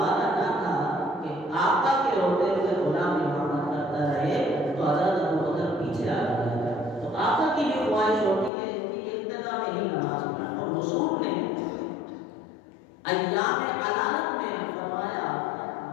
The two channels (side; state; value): right; drops out; at 8.5 s